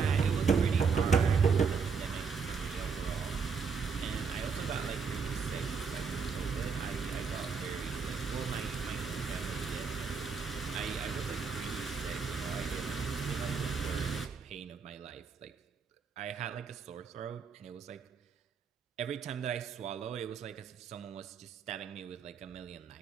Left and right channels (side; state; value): left; quieter; 5.6 dB